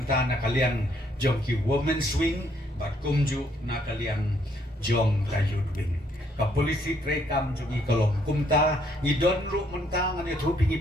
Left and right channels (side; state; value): both; normal; correlation 0.69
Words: kalian jong ki women swing bat kumju na kalian jong ka youth wing ka polisi tre kam jong I kolong kumta ni don ru mentang ani thu